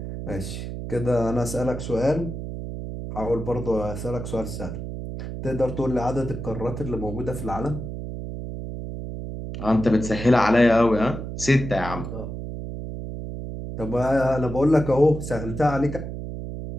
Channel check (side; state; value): right; noise; hum, 7 dB below the sound